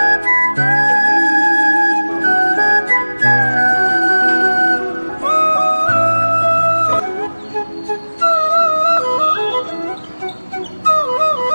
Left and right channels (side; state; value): both; inverted; correlation -1.00